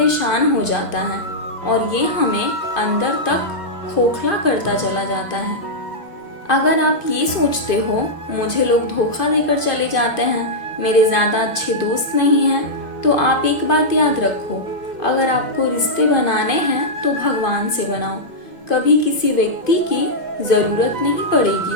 हो जाता है, और ये हमें अंदर तक खोखला करता चला जाता है। अगर आप ये सोचते हो मुझे लोग धोखा देकर चले जाते हैं, मेरे ज़्यादा अच्छे दोस्त नहीं हैं, तो आप एक बात याद रखो, अगर आपको रिश्ते बनाने हैं तो भगवान से बनाओ। कभी किसी व्यक्ति की ज़रूरत नहीं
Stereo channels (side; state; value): right; late; 2.1 ms